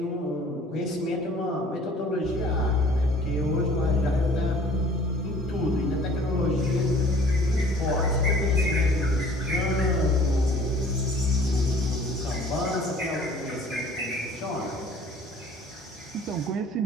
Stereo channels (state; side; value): normal; both; correlation 0.51